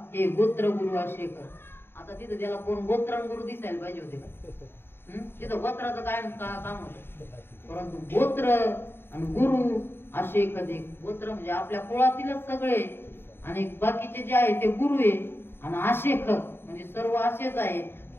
हे गोत्र गुरु अशेक. आता तिथं त्याला कोण गोत्र गुरु दिसायला पाहिजे होते का? तिथं गोत्राचं काय काम होतं. परंतु गोत्र आणि गुरु अशेक देख. गोत्र म्हणजे आपल्या कुळातीलच सगळे आणि बाकीचे जे आहे ते गुरु आहे. आणि आशेख म्हणजे सर्व आशेच आहे.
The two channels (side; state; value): right; late; 0.11 ms